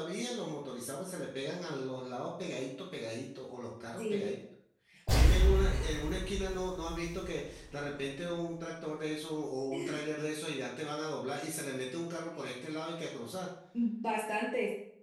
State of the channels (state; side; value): identical; both; correlation 1.00